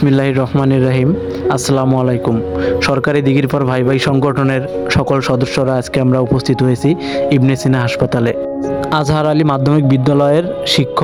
রহমানির রহিম। আসসালামু আলাইকুম। সরকারি দিঘির পর ভাই ভাই সংগঠনের সকল সদস্যরা আজকে আমরা উপস্থিত হয়েছি ইবনে সিনা হাসপাতালে। আজহার আলী মাধ্যমিক বিদ্যালয়ের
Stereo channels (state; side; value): identical; both; correlation 1.00